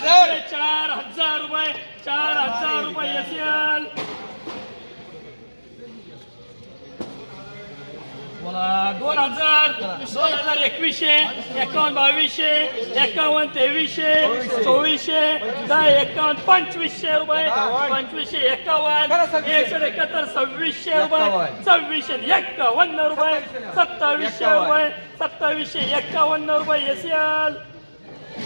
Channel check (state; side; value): inverted; both; correlation -1.00